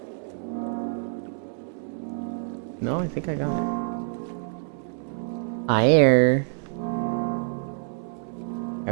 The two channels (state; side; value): silent; left; 60 dB below the other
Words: No, I think I got it. Fire. I